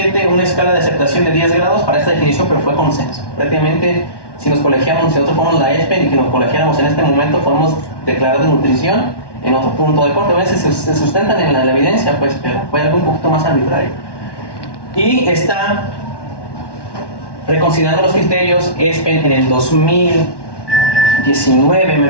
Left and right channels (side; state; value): right; late; 1.1 ms